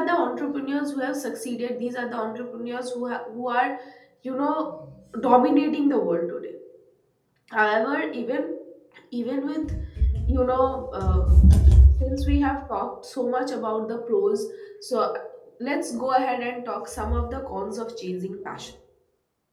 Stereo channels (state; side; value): identical; both; correlation 1.00